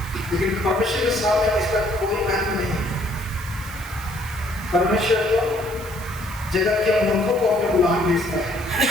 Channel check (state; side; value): noise; right; hiss, 17 dB below the sound